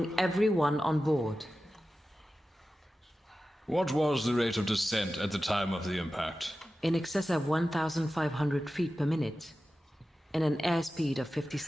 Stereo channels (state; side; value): normal; both; correlation 0.94